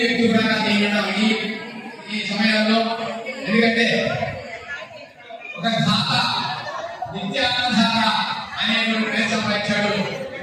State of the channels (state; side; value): identical; both; correlation 1.00